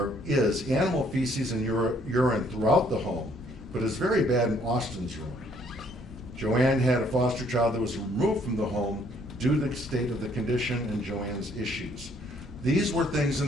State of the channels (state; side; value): normal; both; correlation 0.64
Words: is animal feces and urine throughout the home, but it's very bad in Austin's room. Joanne had a foster child that was removed from the home due to the state of the condition and Joanne's issues. These were things in